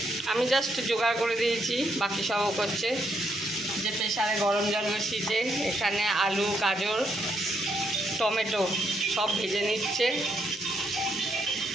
আমি জাস্ট জোগাড় করে দিয়েছি, বাকি সবও করছে। যে প্রেসারে গরম জল বসিয়েছে, এখানে আলু, গাজর, টমেটো সব ভেজে নিচ্ছে।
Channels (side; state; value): both; normal; correlation 0.76